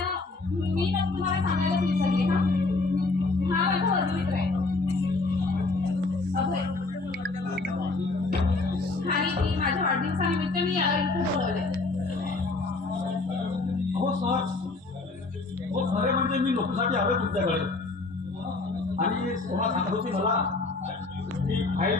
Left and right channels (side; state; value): right; quieter; 3.5 dB